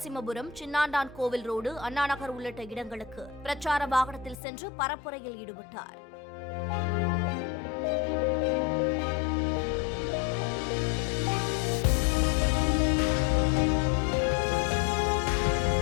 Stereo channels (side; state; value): right; drops out; at 4.4 s